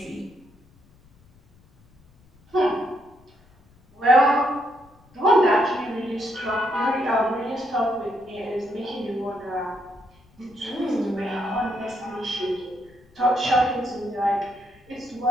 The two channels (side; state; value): left; noise; rumble, 29 dB below the sound